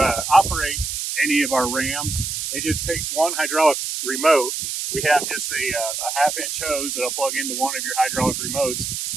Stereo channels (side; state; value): right; noise; hiss, 3 dB below the sound